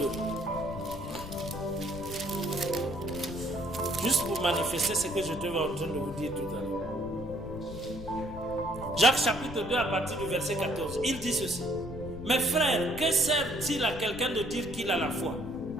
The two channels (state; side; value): noise; left; rumble, 12 dB below the sound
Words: Juste pour manifester ce que je te en train de vous dire tout à l'heure. Jacques chapitre 2 à partir du verset 14. Il dit ceci. Mes frères, que sert-il à quelqu'un de dire qu'il a la foi?